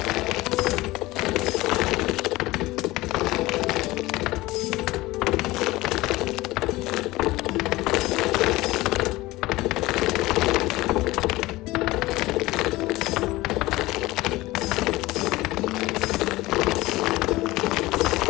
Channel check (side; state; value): right; quieter; 19.2 dB